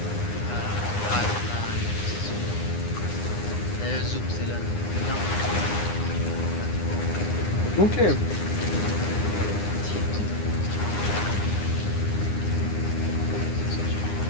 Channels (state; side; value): late; right; 9.8 ms